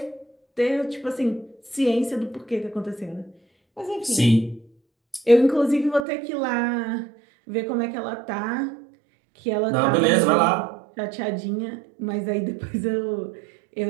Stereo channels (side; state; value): left; drops out; at 6.0 s